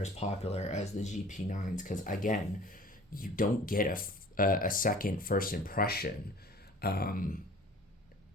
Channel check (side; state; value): both; normal; correlation 0.46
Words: as popular as the GP9s, because again, you don't get a second first impression.